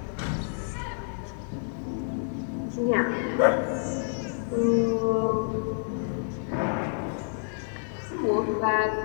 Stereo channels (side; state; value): right; silent; 59 dB below the other